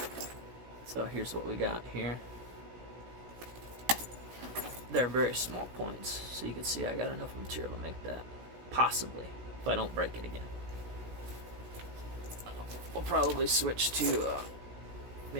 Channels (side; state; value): left; late; 16 ms